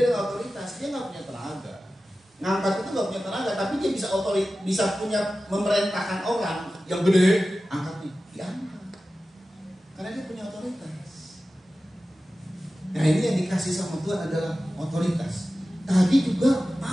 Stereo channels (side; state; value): both; normal; correlation 0.95